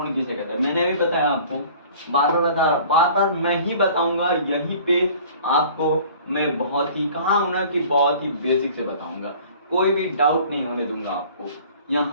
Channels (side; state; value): both; inverted; correlation -0.48